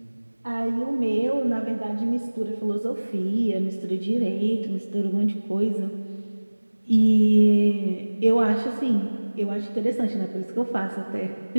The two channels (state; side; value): inverted; both; correlation -1.00